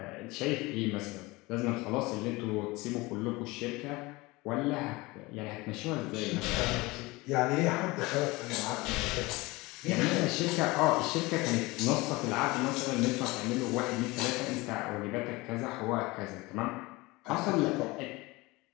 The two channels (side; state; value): right; quieter; 22.5 dB